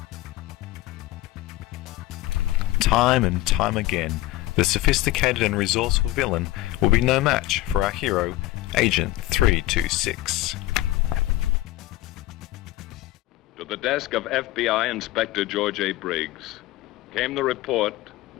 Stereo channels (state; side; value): quieter; right; 16.8 dB